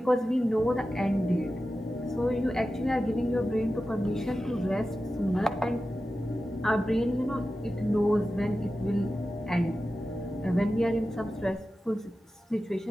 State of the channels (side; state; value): both; normal; correlation 0.93